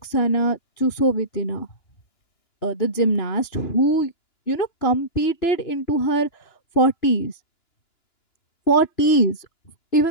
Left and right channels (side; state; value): right; late; 2.9 ms